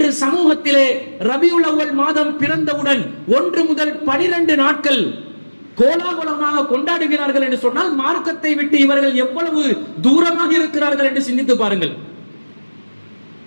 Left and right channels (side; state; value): both; inverted; correlation -1.00